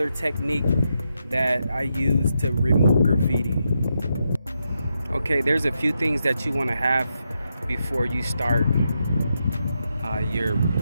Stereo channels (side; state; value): both; inverted; correlation -0.84